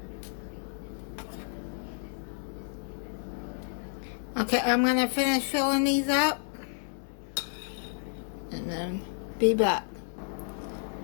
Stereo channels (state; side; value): silent; right; 57 dB below the other